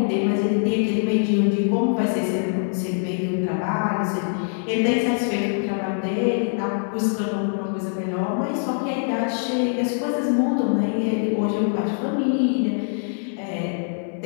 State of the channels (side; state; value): right; silent; digital silence